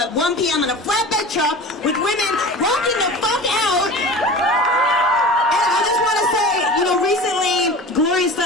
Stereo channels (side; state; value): both; normal; correlation 0.36